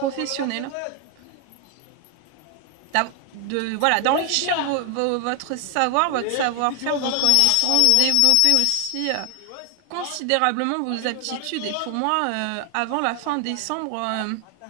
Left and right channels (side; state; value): both; different; correlation 0.00